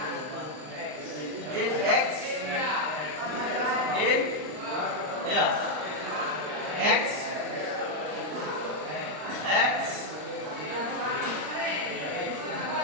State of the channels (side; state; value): left; late; 39 ms